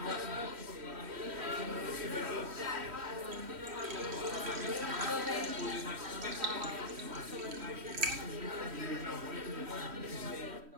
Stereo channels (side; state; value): left; late; 3.1 ms